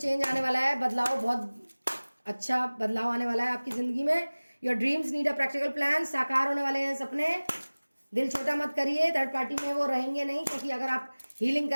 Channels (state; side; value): inverted; both; correlation -1.00